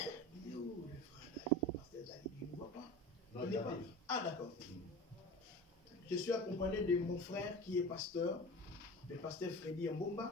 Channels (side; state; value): both; normal; correlation 0.34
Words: Il est où le frère Dali, le pasteur Dali? Il ne voit pas. Non, il n'est pas. Ah d'accord. Je suis accompagné de mon frère qui est pasteur, le pasteur Freddy